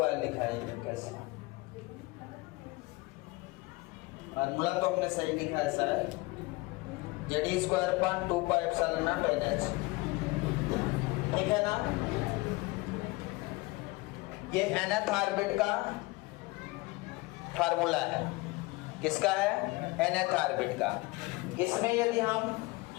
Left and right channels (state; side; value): quieter; right; 23.1 dB